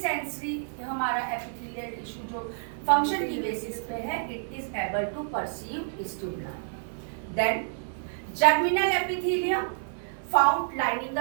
हमारा एपिथेलियल टिश्यू जो फंक्शन की बेसिस पे है, it is able to perceive stimuli. Then germinal epithelium, found lining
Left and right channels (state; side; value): silent; left; digital silence